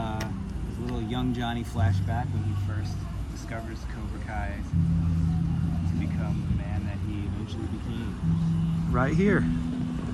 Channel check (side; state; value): both; identical; correlation 1.00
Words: little young Johnny flashback when he first discovers Cobra Kai to become the man that he eventually became. Right here.